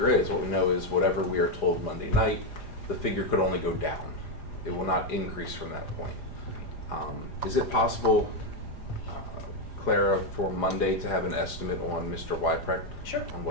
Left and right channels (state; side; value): late; right; 4.9 ms